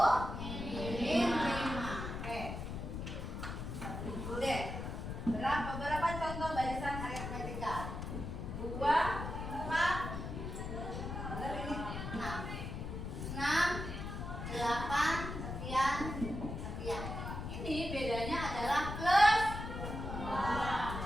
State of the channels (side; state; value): left; noise; rumble, 6 dB below the sound